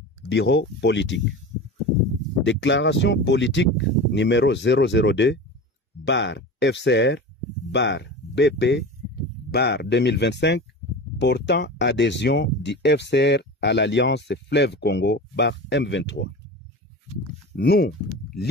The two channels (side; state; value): both; normal; correlation 0.31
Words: bureau politique. Déclaration politique numéro 002, FCR, BP, 2025, portant adhésion du FCR à l'Alliance Fleuve Congo, M23. Nous,